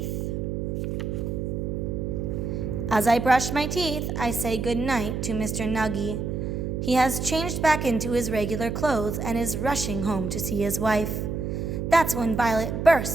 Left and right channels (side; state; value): right; noise; hum, 3 dB below the sound